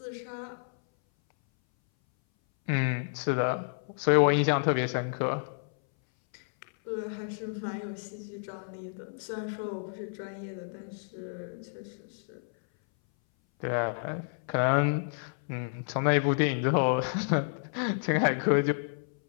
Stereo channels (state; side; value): silent; right; 58 dB below the other